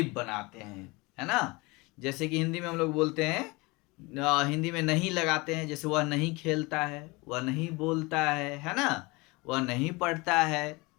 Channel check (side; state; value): right; quieter; 24.9 dB